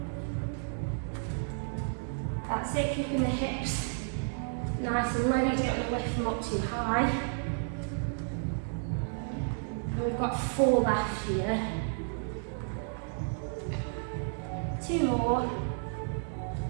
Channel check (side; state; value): left; silent; digital silence